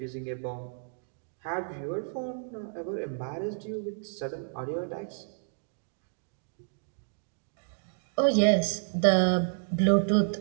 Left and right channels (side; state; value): left; silent; digital silence